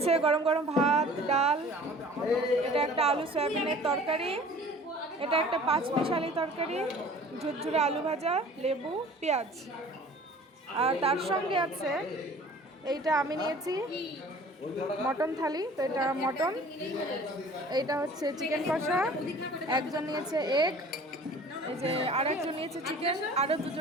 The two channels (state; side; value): normal; both; correlation 0.47